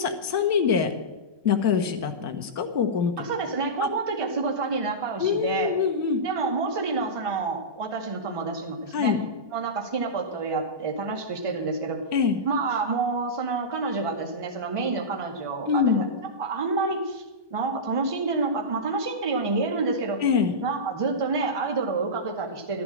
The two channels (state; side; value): late; left; 1.2 ms